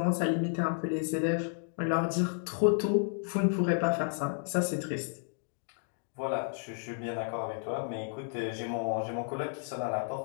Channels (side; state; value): right; silent; 56 dB below the other